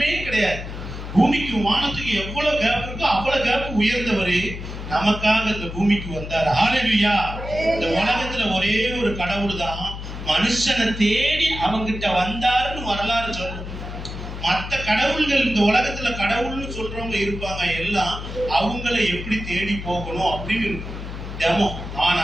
கிடையாது. பூமிக்கும் வானத்துக்கு எவ்வளவு கேப் இருக்கோ அவ்வளவு கேப் உயர்ந்தவர் நமக்காக இந்த பூமிக்கு வந்தார். ஹalleluya. இந்த உலகத்துல ஒரே ஒரு கடவுள் தான் மனுஷனை தேடி அவங்கிட்ட வந்தாருன்னு வரலாறு சொல்லும். மற்ற கடவுள்கள் இந்த உலகத்துல கடவுள்னு சொல்றவங்க இருப்பாங்க, எல்லாம் அவங்களை எப்படி தேடி போகணும் அப்படின்னு இருக்கும் டெமோ.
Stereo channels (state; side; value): noise; left; hum, 8 dB below the sound